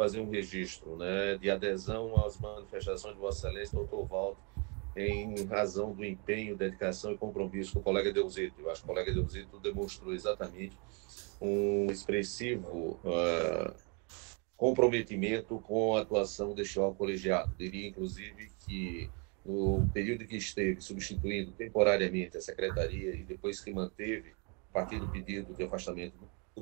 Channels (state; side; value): quieter; left; 34.1 dB